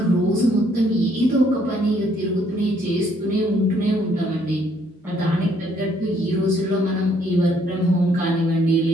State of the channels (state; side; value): normal; both; correlation 0.67